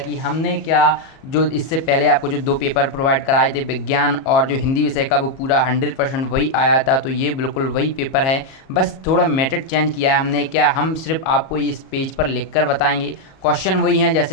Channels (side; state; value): right; late; 37 ms